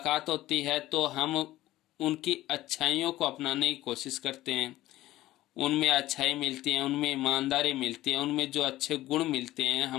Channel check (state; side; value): quieter; right; 15.8 dB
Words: होती है तो हम उनकी अच्छाइयों को अपनाने की कोशिश करते हैं। उनमें अच्छाई मिलती है, उनमें ईमानदारी मिलती है, उनमें जो अच्छे गुण मिलते हैं